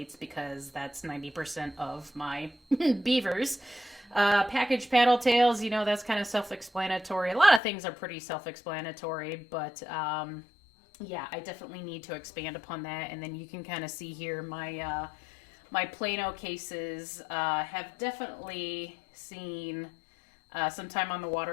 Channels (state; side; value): drops out; right; at 7.6 s